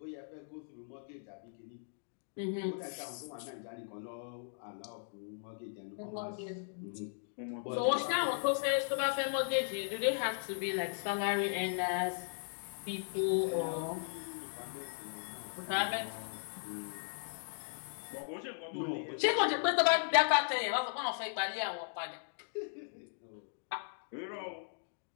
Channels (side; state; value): right; silent; digital silence